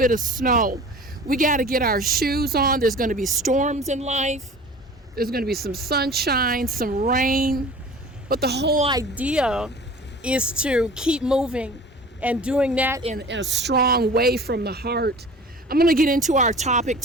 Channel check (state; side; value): normal; both; correlation 0.42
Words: of snow? We got to get our shoes on. There's going to be storms in life. There's going to be some sunshine, some rain. But the whole idea is to keep moving and doing that in a strong way from the heart. I'm going to get into our topic